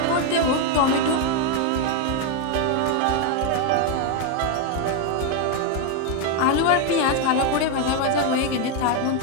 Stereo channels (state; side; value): different; both; correlation 0.01